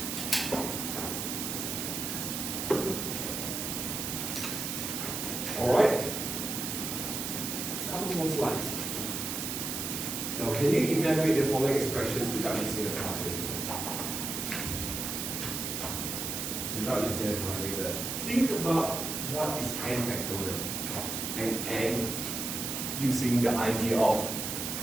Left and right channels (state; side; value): noise; right; hiss, 3 dB below the sound